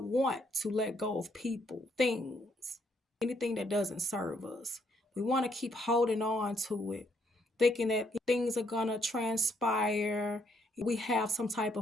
want to let go of people, things, anything that doesn't serve us. We want to keep holding on to it, thinking that things are going to transpire. We have some type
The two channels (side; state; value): both; normal; correlation 0.72